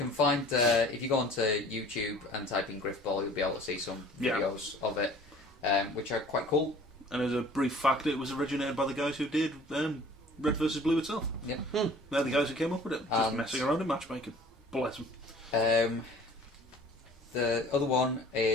find if you go onto YouTube and type in Griff Ball, you'll be able to see some Yeah. videos of it, which are quite cool. And as a brief fact, it was originated by the guys who did Red vs Blue itself. Yep. They're the guys who came up with it. Just And- messing around in matchmaking. Bless them. The other one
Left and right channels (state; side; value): normal; both; correlation 0.49